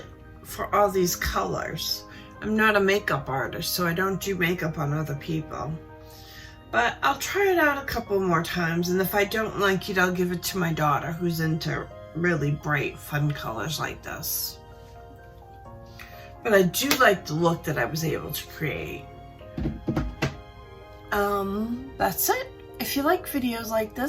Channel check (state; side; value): identical; both; correlation 1.00